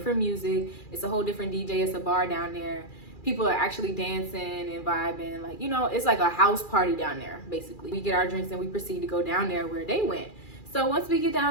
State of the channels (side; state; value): right; late; 2.4 ms